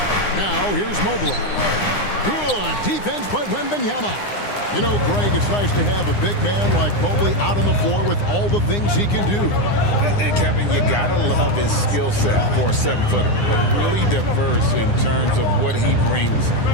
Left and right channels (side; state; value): right; late; 9.8 ms